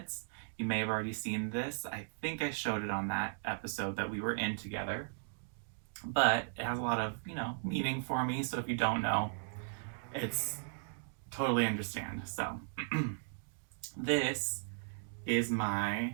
you may have already seen this. I think I showed it on that episode that we were in together. But it has a lot of, meaning for me. So if you don't know, it's totally understand. So this is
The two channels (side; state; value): left; silent; digital silence